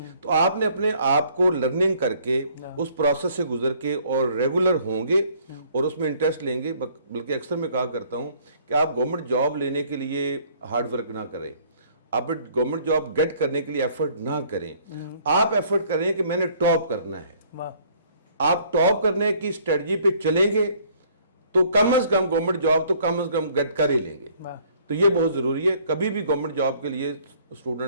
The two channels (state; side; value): inverted; both; correlation -0.60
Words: तो आपने अपने आप को लर्निंग करके उस प्रोसेस से गुजर के और रेगुलर होंगे और उसमें इंटरेस्ट लेंगे। बल्कि अक्सर मैं कहा करता हूं कि आप गवर्नमेंट जॉब लेने के लिए हार्ड वर्क ना करें, आप गवर्नमेंट जॉब गेट करने के लिए एफर्ट ना करें, आप एफर्ट करें कि मैंने टॉप करना है। आप टॉप करने की स्ट्रेटजी पे चलेंगे तो कम से कम गवर्नमेंट जॉब तो कम से कम गेट कर ही लेंगे। तो ये बहुत जरूरी है। कभी भी गवर्नमेंट जॉब के लिए